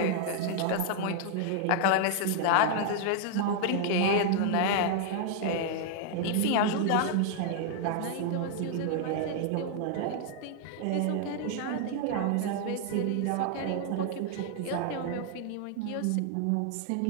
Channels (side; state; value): both; different; correlation -0.01